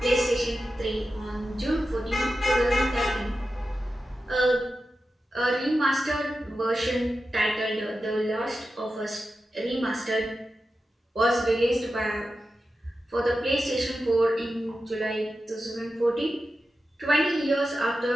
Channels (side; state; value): both; normal; correlation 0.92